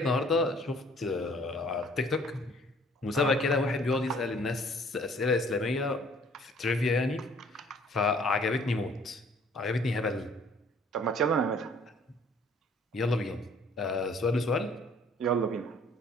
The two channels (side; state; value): both; normal; correlation 0.57